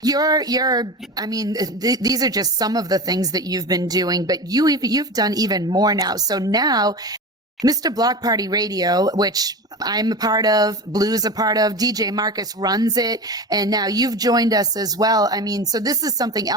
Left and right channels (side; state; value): both; normal; correlation 0.27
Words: these are just some of the things that you've been doing, but you've done even more now. So now Mr. Block Party Radio, which I'm a part of, Blue's a part of, DJ Marcus runs it, and now you've joined us as well. I mean, so this is something